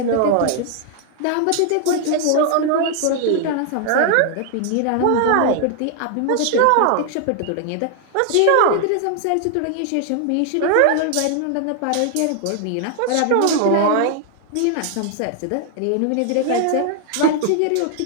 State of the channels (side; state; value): both; different; correlation 0.00